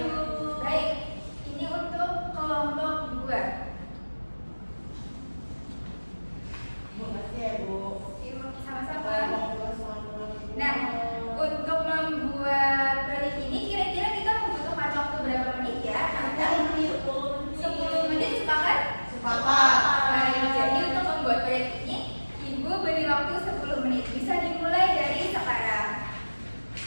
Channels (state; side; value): inverted; both; correlation -1.00